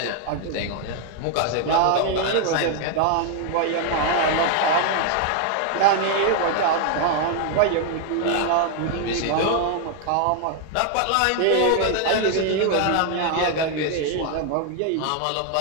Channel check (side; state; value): both; different; correlation 0.00